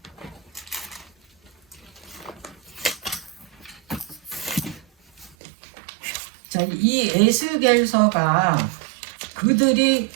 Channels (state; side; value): drops out; left; at 5.4 s